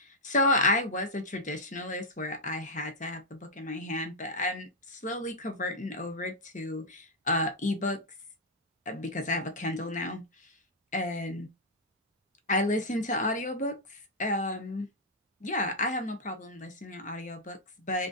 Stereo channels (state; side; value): normal; both; correlation -0.04